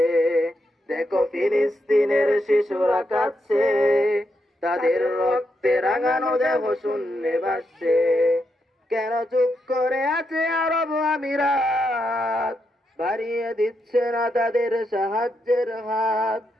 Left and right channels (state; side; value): normal; both; correlation 0.82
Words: দেখো ফিলিস্তিনের শিশুরা কাঁদছে, তাদের রক্তে রাঙানো দেহ শূন্যে ভাসছে। কেন চুপ করে আছে আরব আমিরাত, বাড়িয়ে দিচ্ছে না তাদের সাহায্যের হাত।